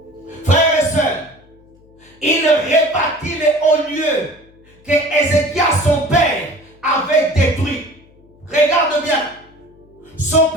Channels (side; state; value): left; noise; hum, 29 dB below the sound